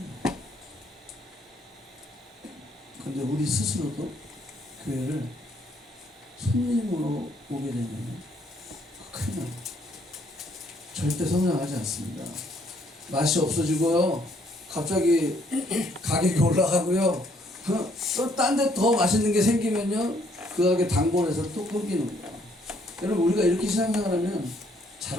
근데 우리 스스로도 교회를 손님으로 오게 되면 큰일 납니다. 절대 성장하지 않습니다. 맛이 없어지고요. 갑자기 가격이 올라가고요. 또 딴 데 더 맛있는 게 생기면요. 그 가게 단골에서 또 끊기는 거예요. 여러분, 우리가 이렇게 신앙생활하면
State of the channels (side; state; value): both; normal; correlation 0.67